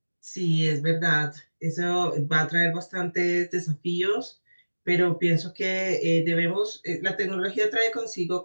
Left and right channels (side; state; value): both; inverted; correlation -1.00